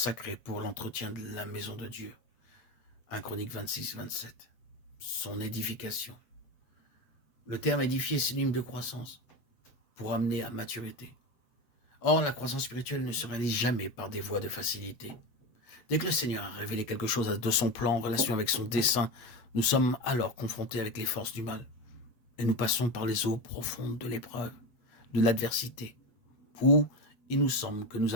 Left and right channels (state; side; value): late; right; 8.4 ms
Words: pour l'entretien de la maison de Dieu. 1 Chronique 26, 27. Son édification. Le terme édifier est synonyme de croissance, pour amener à maturité. Or, la croissance spirituelle ne se réalise jamais par des voies de facilité. Dès que le Seigneur a révélé quelque chose de son plan en relation avec son dessein, nous sommes alors confrontés avec les forces du mal. Et nous passons par les eaux profondes de l'épreuve, de l'adversité, où il nous semble que